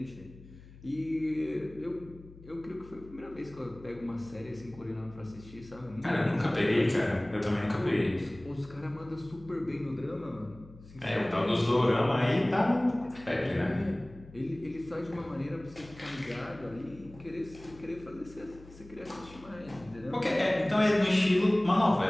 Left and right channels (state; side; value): noise; left; hum, 20 dB below the sound